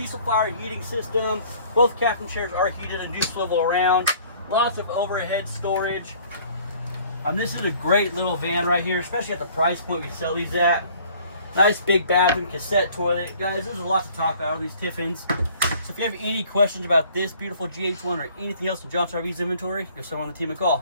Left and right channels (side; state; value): both; inverted; correlation -0.54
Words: fire heating system. Both captain chairs are heated and do swivel around. Lots of overhead storage. This is a great little van right here, especially at the price point we sell these at. Nice big bathroom, cassette toilet. Guys, there's a lot to talk about on these Tiffins. So if you have any questions about this beautiful GH1 or anything else in Johnson RV's inventory, give someone on the team a